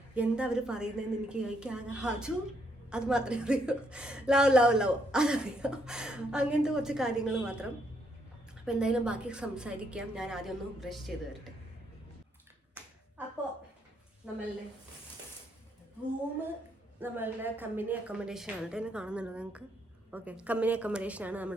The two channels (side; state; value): both; normal; correlation 0.73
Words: എന്താ അവർ പറയുന്നതെന്ന് എനിക്ക് ആകെ ഹജു അത് മാത്രമേ അറിയൂ, ലവ് അതറിയാം, അങ്ങനത്തെ കുറച്ച് കാര്യങ്ങൾ മാത്രം. അപ്പോൾ എന്തായാലും ബാക്കി സംസാരിക്കാം. ഞാൻ ആദ്യം ഒന്ന് ബ്രഷ് ചെയ്ത് വരട്ടെ. അപ്പോൾ നമ്മളുടെ റൂമ് നമ്മളുടെ കമ്പനി അക്കോമഡേഷൻ ആണ്. എന്നെ കാണുന്നുണ്ടോ നിങ്ങൾക്ക്? ഓക്കെ, കമ്പനി അക്കോമഡേഷൻ ആണ്